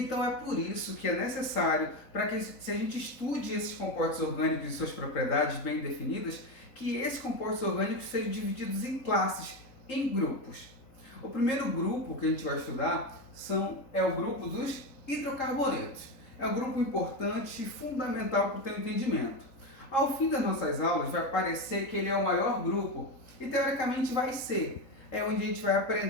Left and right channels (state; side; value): late; right; 3.8 ms